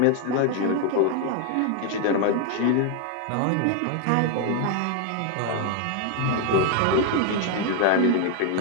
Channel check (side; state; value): both; different; correlation 0.01